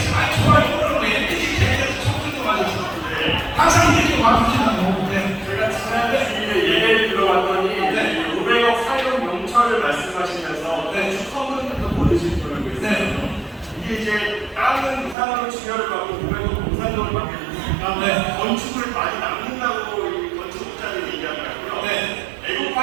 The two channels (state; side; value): drops out; left; at 15.2 s